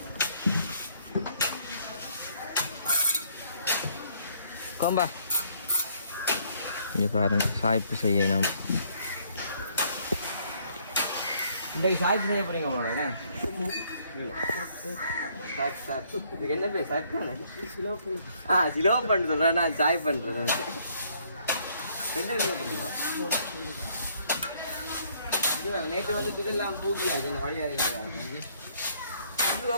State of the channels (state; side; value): inverted; both; correlation -0.66